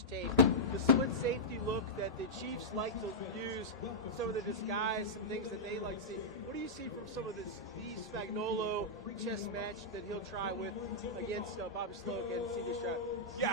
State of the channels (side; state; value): both; normal; correlation -0.09